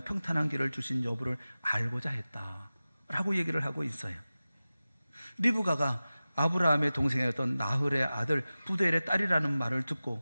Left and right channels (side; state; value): both; inverted; correlation -0.96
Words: 평탄한 길을 주신 여부를 알고자 했다라고 얘기를 하고 있어요. 리브가가 아브라함의 동생이었던 나홀의 아들 부두엘의 딸이라는 말을